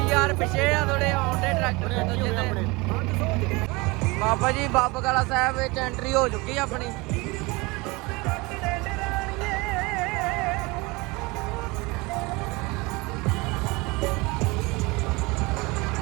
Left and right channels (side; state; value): left; quieter; 24.7 dB